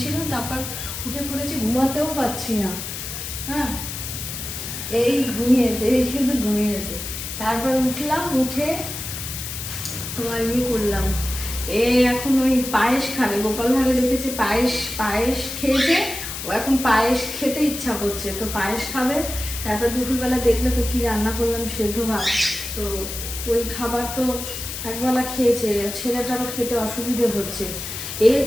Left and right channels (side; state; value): left; noise; hiss, 7 dB below the sound